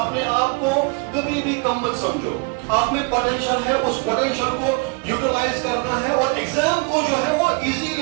अपने आप को कभी भी कम मत समझो। आप में पोटेंशियल है, उस पोटेंशियल को यूटिलाइज करना है और एग्जाम को जो है वो इजी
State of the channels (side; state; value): left; quieter; 30.9 dB